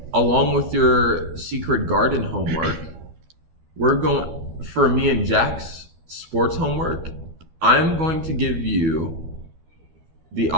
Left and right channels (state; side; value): late; left; 12 ms